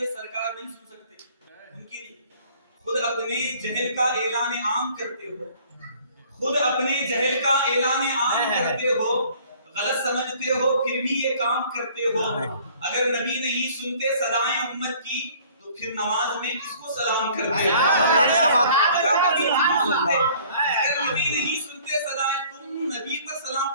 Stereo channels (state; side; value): inverted; both; correlation -0.54